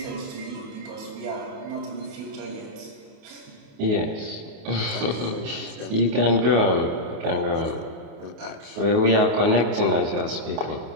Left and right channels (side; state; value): left; late; 28 ms